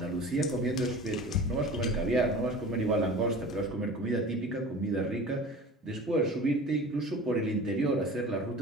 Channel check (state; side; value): normal; both; correlation 0.39